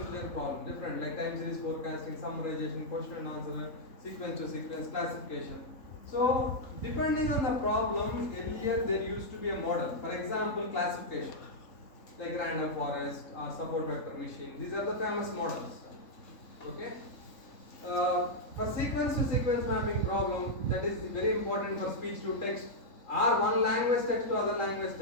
problem, different, like time series forecasting, summarization, question and answer, sequence to sequence, classification. So depending on the problem, earlier there used to be a model. For example, classification, like random forest or support vector machine. These are the famous models. Okay. For sequence to sequence mapping problem, that is very important for speech to text or one language text to other language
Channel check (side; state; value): right; late; 3.7 ms